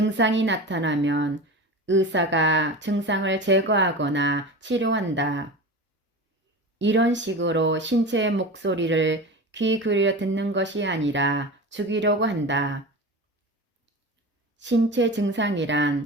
나타나면 의사가 증상을 제거하거나 치료한다. 이런 식으로 신체의 목소리를 귀 기울여 듣는 것이 아니라 죽이려고 한다. 신체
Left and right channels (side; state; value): both; normal; correlation 0.30